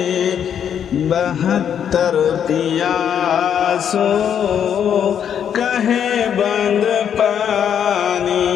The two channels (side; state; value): right; quieter; 8.7 dB